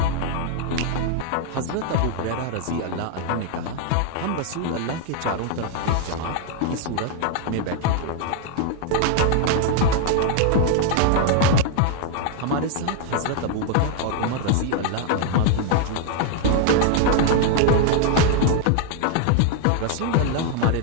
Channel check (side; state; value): both; different; correlation 0.00